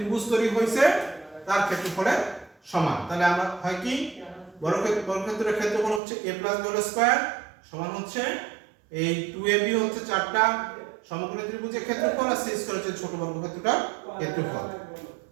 তৈরি হয়েছে তার ক্ষেত্রফলের সমান। তাহলে আমরা হয় কি, বর্গক্ষেত্রের ক্ষেত্রফল হচ্ছে a plus b whole square সমান হচ্ছে এই 2ab হচ্ছে চারটা সমকোণী ত্রিভুজের ক্ষেত্রফল আর c স্কয়ার হচ্ছে ছোট বর্গক্ষেত্রটার ক্ষেত্রফল।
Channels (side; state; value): left; drops out; at 6.0 s